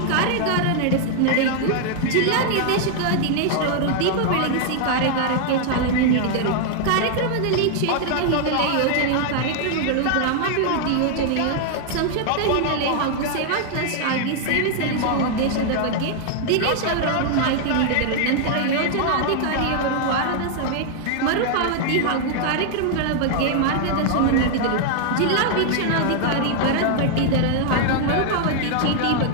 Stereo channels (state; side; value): different; both; correlation 0.00